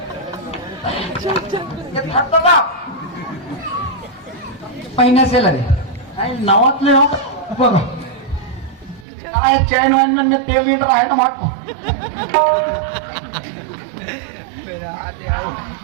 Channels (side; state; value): left; drops out; at 9.1 s